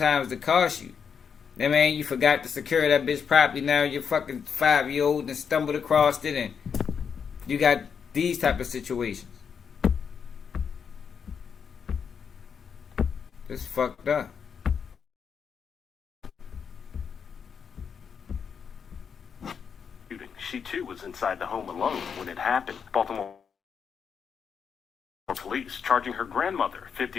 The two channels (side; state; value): right; quieter; 6.8 dB